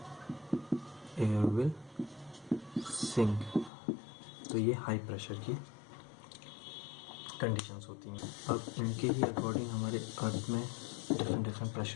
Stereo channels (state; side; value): drops out; right; at 3.7 s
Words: एयर विल सिंक। तो ये हाई प्रेशर की कंडीशंस होती हैं। अब इनके ही अकॉर्डिंग हमारे अर्थ में डिफरेंट